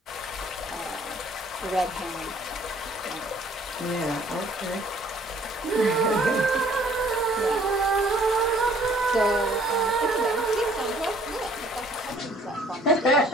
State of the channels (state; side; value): normal; both; correlation 0.58